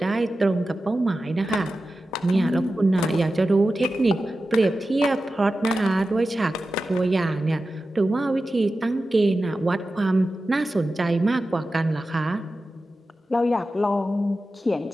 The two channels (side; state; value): both; normal; correlation 0.93